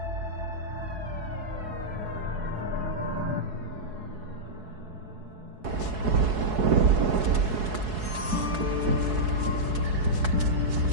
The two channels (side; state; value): left; late; 4.7 ms